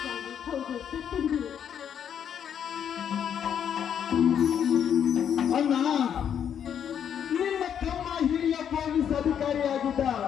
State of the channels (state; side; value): quieter; right; 8.7 dB